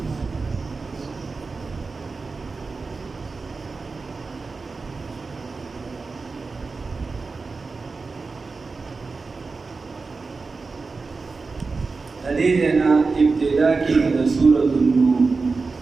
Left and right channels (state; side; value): quieter; left; 4.2 dB